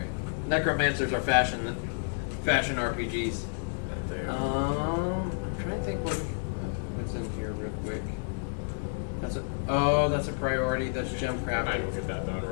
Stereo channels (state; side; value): silent; right; digital silence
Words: Necromancers are fashion RPGs. They are. I'm trying to think what's in here real quick. That's a priority. That's gem I crafting. might go get that done